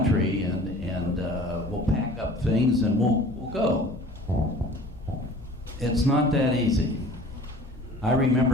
and we'll pack up things and we'll go. It's not that easy. I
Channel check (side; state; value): both; normal; correlation 0.46